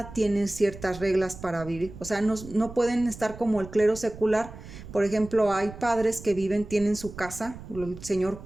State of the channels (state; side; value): noise; right; rumble, 14 dB below the sound